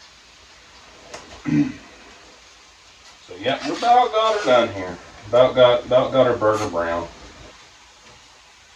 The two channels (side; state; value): both; identical; correlation 1.00